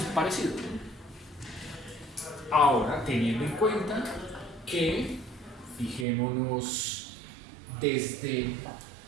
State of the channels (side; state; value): left; drops out; at 6.1 s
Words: parecido. Ahora, teniendo en cuenta que, fijémonos desde,